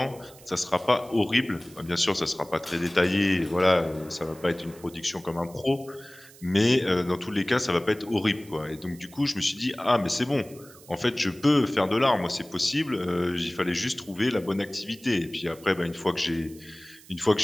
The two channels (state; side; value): noise; right; hiss, 22 dB below the sound